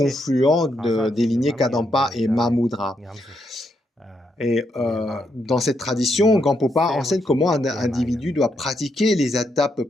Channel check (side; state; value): both; normal; correlation 0.79